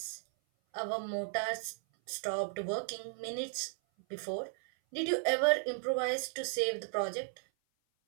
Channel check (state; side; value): silent; left; 54 dB below the other